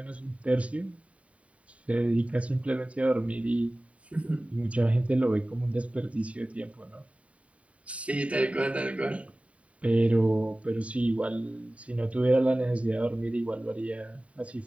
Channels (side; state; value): left; late; 0.065 ms